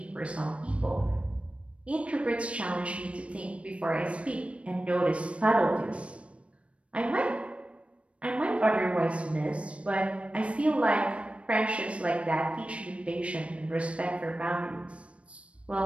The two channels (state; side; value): late; left; 0.061 ms